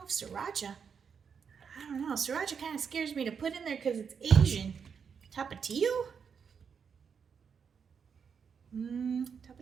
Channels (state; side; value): quieter; left; 6.6 dB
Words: if Sriracha. I don't know. Sriracha kind of scares me to put in there because it's Asian. Tapatío?